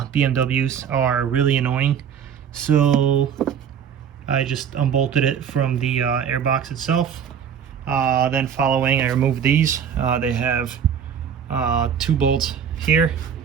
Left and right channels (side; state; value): left; quieter; 8.0 dB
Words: are really annoying. So I just unbolted it from the airbox itself. Then following, I removed these. They have 2 bolts here,